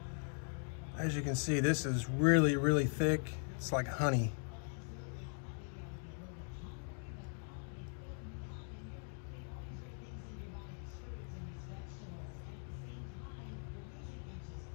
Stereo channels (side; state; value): right; silent; 51 dB below the other